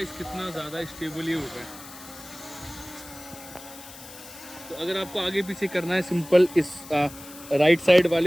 कितना ज़्यादा स्टेबल ये हो रहा है। तो अगर आपको आगे पीछे करना है, सिंपल इस राइट साइड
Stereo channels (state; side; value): noise; left; hiss, 16 dB below the sound